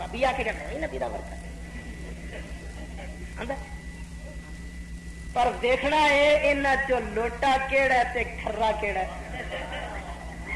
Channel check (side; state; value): both; identical; correlation 1.00